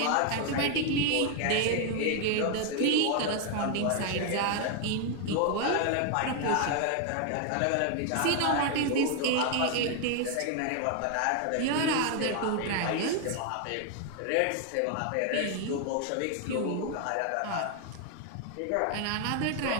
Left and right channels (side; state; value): both; different; correlation 0.00